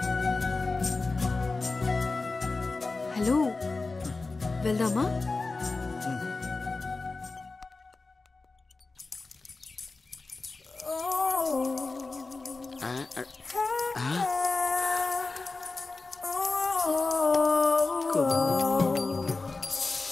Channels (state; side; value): quieter; right; 3.7 dB